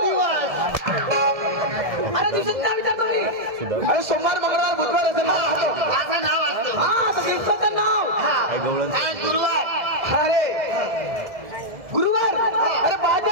दिवस अरे दिवसाचं नाव विचारतो मी अरे सोमवार मंगळवार बुधवार असेल ना असं नाव असतं हा तर दिवसाचं नाव आज गुरुवार अरे गुरुवार अरे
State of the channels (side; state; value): left; late; 1.7 ms